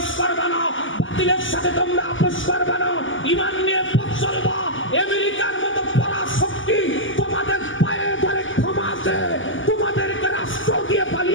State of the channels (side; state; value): right; late; 0.57 ms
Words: করবে না, বাতিলের সাথে তোমরা আপোষ করবে না, ঈমান নিয়ে পথ চলবা। আমেরিকার মতো পরাশক্তি তোমাদের পায়ে ধরে ক্ষমা আছে, তোমাদেরকে রাষ্ট্র দিয়ে